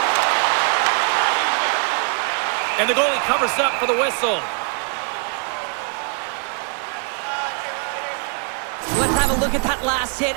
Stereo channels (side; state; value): left; quieter; 39.0 dB